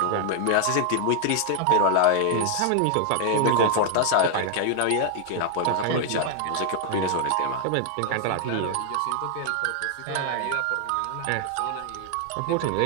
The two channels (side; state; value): both; different; correlation 0.00